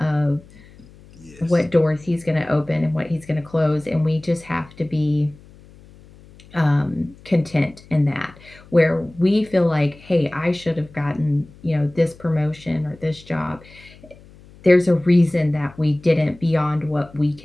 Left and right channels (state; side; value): noise; left; hum, 23 dB below the sound